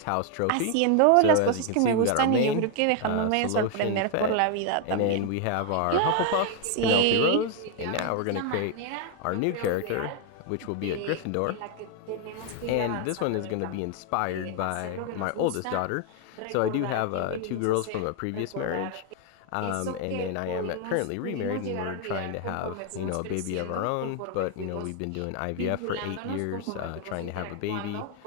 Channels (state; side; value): different; both; correlation 0.01